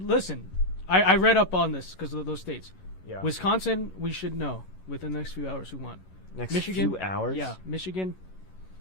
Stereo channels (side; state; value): right; late; 11 ms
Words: I read up on this because of those states. Yeah. Wisconsin, we should know within the next few hours who won. Next Michigan, few hours? Yeah. Michigan,